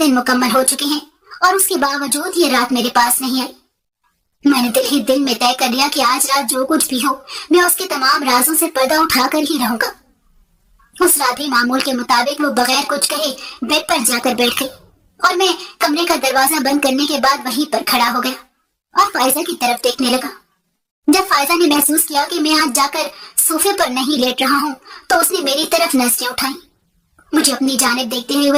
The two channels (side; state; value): both; identical; correlation 1.00